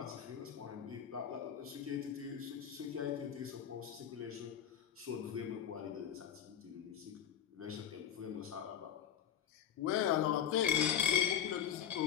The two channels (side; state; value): right; quieter; 9.3 dB